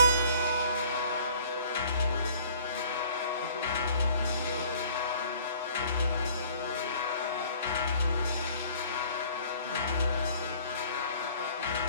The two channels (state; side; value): inverted; both; correlation -0.54